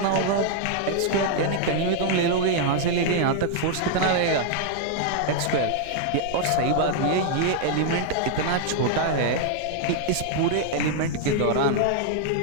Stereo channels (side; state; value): both; different; correlation 0.00